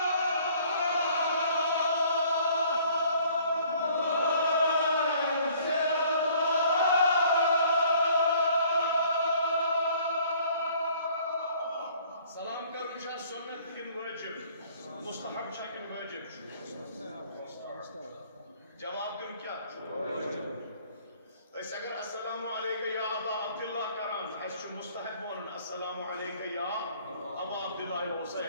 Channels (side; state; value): both; inverted; correlation -0.57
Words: मुस्तहब शक्ल वाजिब जवाब दूं क्या ऐसे अगर अस्सलामु अलैका या अबा अब्दुल्लाह करान ऐसे मुस्तहब बोलन अस्सलामु अलैका या अबा अब्दुल्लाह